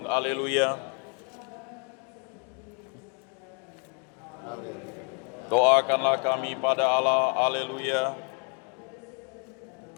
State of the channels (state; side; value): quieter; right; 37.1 dB